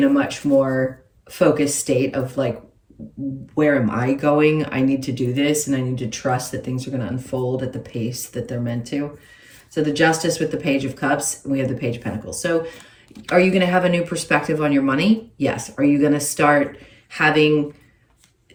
a much more focused state of like, where am I going? I need to do this, and I need to trust that things are going to unfold at the pace that they're meant to. So the Justice with the Page of Cups, and we have the Page of Pentacles. So are you going to have a new perspective on your money? Yes. Are you going to start having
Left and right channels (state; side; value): identical; both; correlation 1.00